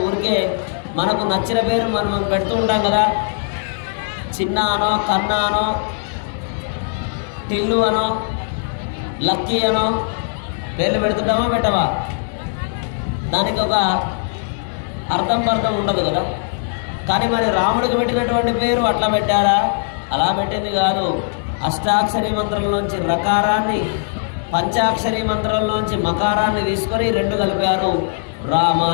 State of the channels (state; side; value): silent; right; digital silence